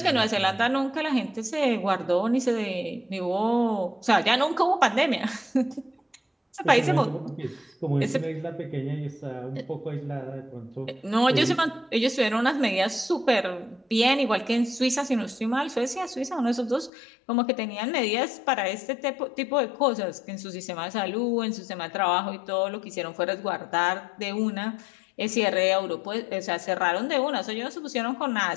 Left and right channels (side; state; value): right; drops out; at 16.9 s